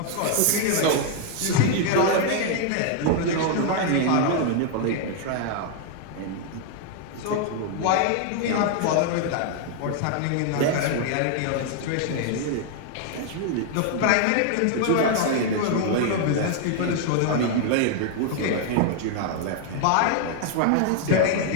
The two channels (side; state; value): both; different; correlation 0.00